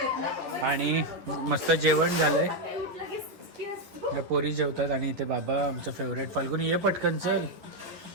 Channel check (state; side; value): late; left; 11 ms